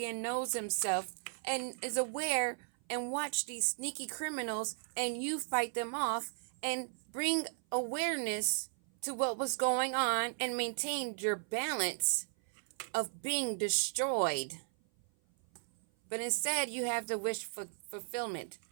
and knows himself and is aware and watch these sneaky criminals and you fight them off and bring awareness to what was going on and maintain your balance of being destroyed. But instead you have the wish for fulfillment,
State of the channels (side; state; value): left; silent; 54 dB below the other